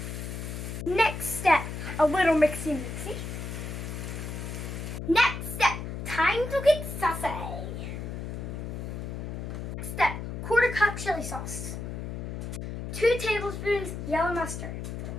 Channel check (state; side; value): noise; left; hum, 6 dB below the sound